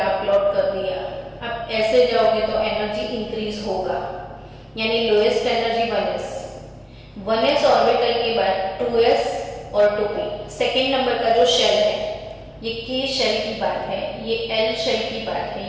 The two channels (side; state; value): both; identical; correlation 1.00